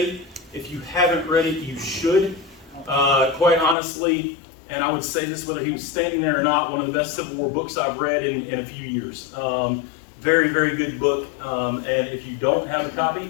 If you haven't read it, you should. Quite honestly, and I would say this whether he was standing there or not, one of the best Civil War books I've read in a few years. Very, very good book. And if you don't have a copy,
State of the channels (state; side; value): drops out; right; at 3.8 s